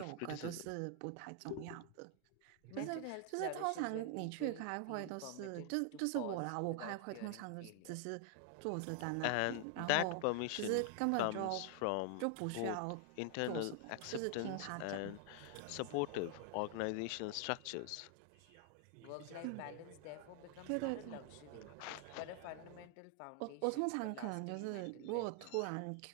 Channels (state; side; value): different; both; correlation 0.00